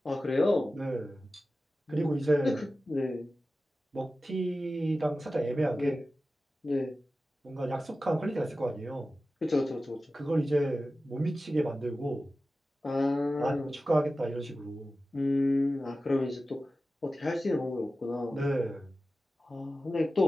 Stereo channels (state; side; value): normal; both; correlation 0.94